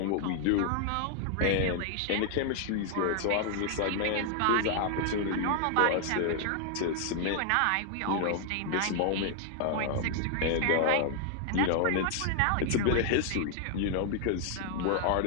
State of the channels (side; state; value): both; different; correlation 0.00